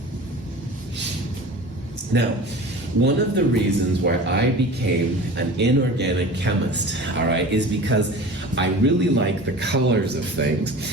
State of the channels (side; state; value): both; normal; correlation 0.37